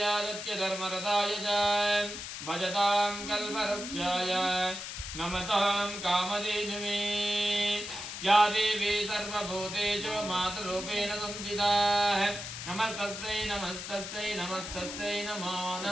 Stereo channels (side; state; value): left; noise; hiss, 8 dB below the sound